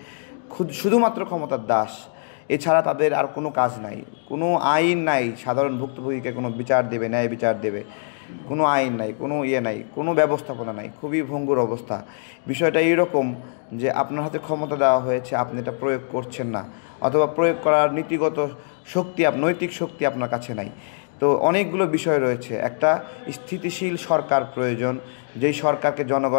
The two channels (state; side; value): silent; right; digital silence